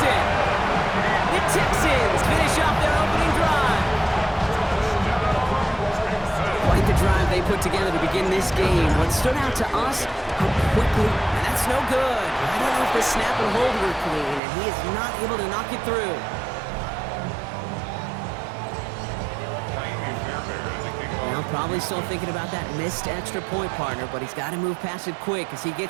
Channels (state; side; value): drops out; left; at 14.4 s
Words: The Texans finish off their opening drive. Quite the drive they put together to begin this game. What stood out to us, how quickly, and that's no good. I don't know if the snap and hold were clean, and he is not able to knock it through. Well, probably still thinking about that missed extra point, partner, but he's got to move past it quick as he